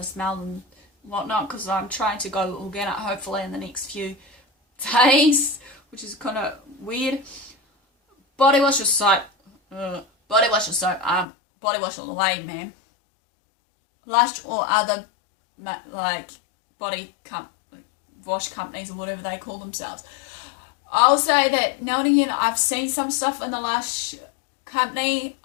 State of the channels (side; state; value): right; drops out; at 11.2 s